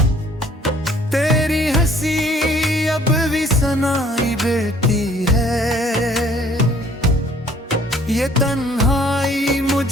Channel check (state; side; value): normal; both; correlation 0.58